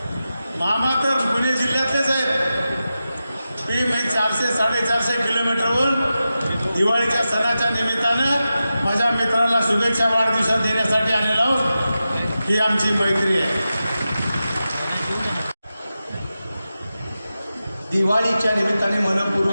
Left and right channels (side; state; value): both; inverted; correlation -0.92